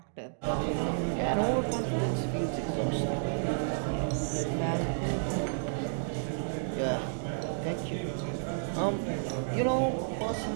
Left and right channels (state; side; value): silent; left; digital silence